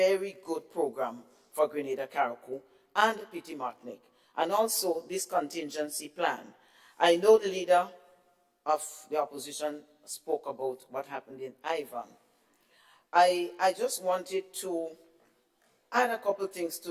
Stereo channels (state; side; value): identical; both; correlation 1.00